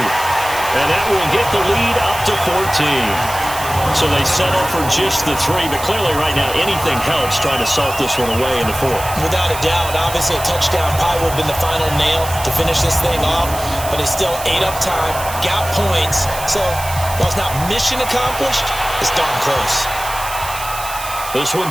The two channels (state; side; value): noise; right; hiss, 10 dB below the sound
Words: And that will get the lead up to 14. So they settle for just the 3. But clearly right now, anything helps trying to salt this one away in the 4th. Without a doubt, obviously a touchdown probably would have been the final nail to finish this thing off. But they still ate up time, got points. So while it's not mission accomplished, it's darn close. This one